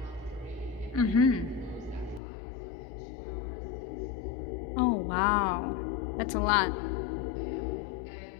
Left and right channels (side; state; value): right; drops out; at 2.2 s